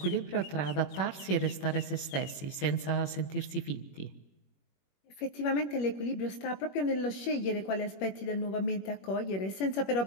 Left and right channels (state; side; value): late; right; 21 ms